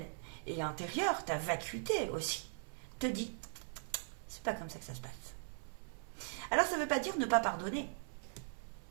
et intérieure, ta vacuité aussi, te dit, c'est pas comme ça que ça se passe. Alors ça ne veut pas dire ne pas pardonner.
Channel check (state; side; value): silent; left; 51 dB below the other